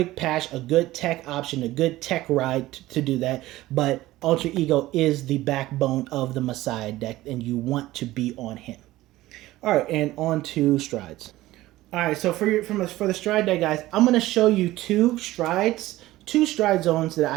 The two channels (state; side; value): quieter; left; 16.8 dB